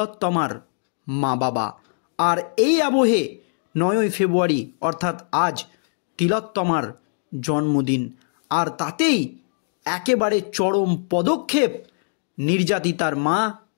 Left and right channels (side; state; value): right; silent; digital silence